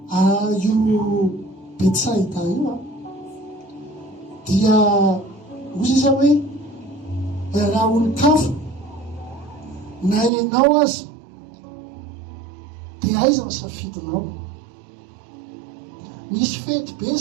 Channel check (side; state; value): left; drops out; at 10.3 s